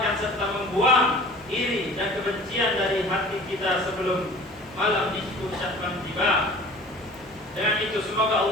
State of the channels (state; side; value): noise; left; hum, 29 dB below the sound